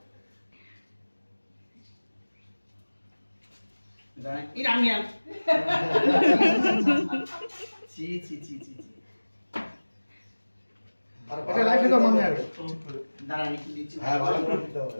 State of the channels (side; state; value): both; inverted; correlation -1.00